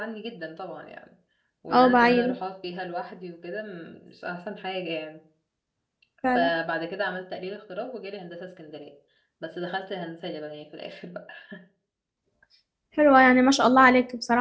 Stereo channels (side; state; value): both; identical; correlation 1.00